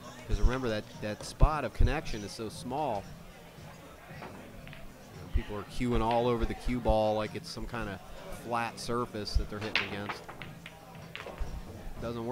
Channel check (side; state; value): both; identical; correlation 1.00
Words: Because remember that spot of connection is so small. People are cueing all over the cue ball like it's some kind of flat surface that they're hitting against. Doesn't